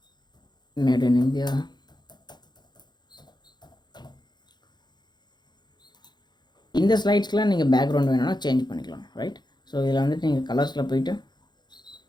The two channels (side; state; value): right; late; 0.21 ms